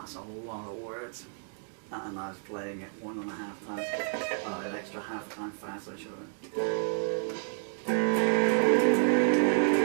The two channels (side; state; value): left; silent; digital silence